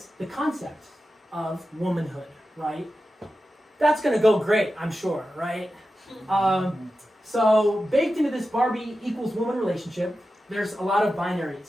the concept of womanhood. Right? That's going to go great, I'm sure, right? So baked into this Barbie equals woman relationship, there's a lot of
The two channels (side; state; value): both; normal; correlation 0.92